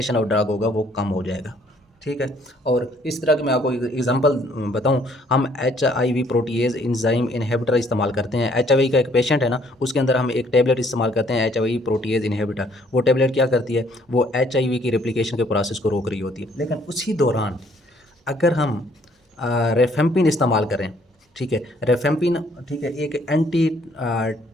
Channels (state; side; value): normal; both; correlation 0.63